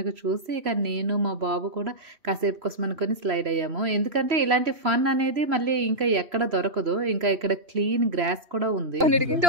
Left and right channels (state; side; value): late; left; 3.0 ms